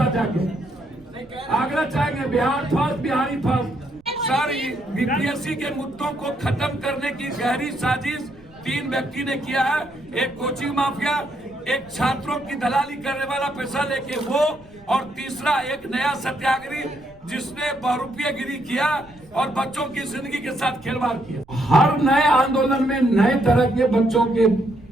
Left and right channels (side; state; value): right; noise; rumble, 27 dB below the sound